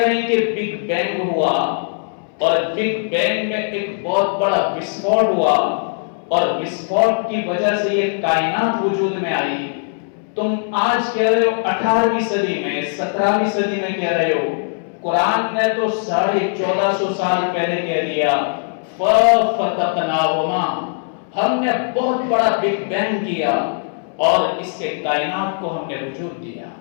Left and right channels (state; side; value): silent; right; 66 dB below the other